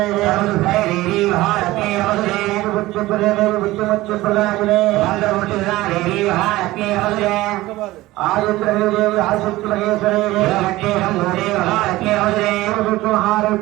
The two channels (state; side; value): quieter; left; 17.9 dB